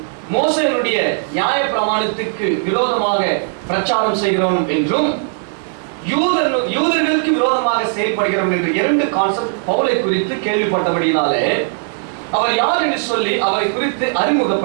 மோசேயுடைய நியாய பிரமாணத்துக்கு விரோதமாக பிரச்சாரம் செய்கிறோம் என்றும் யூதர்களுக்கு விரோதமாக செயல்படுகிறோம் என்ற 2 கான்செப்ட் பவுலை குறித்து கேள்விப்பட்டபடினாலே அவர் யார் என்று சொல்லி அவரை குறித்து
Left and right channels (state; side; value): silent; left; digital silence